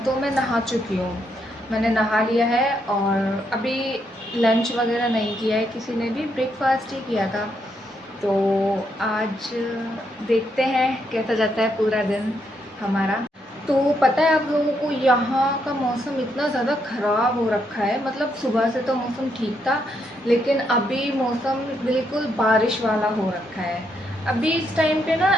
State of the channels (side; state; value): both; normal; correlation 0.77